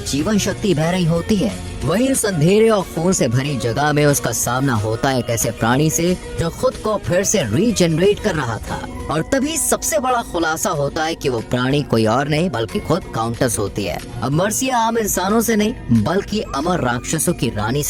जीवन शक्ति बह रही होती है। वहीं उस अंधेरे और खून से भरी जगह में उसका सामना होता है एक ऐसे प्राणी से जो खुद को फिर से रीजनरेट कर रहा था। और तभी सबसे बड़ा खुलासा होता है कि वो प्राणी कोई और नहीं बल्कि खुद काउंटेस होती है। अब मार्सिया आम इंसानों से नहीं बल्कि अमर राक्षसों की रानी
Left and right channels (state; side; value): identical; both; correlation 1.00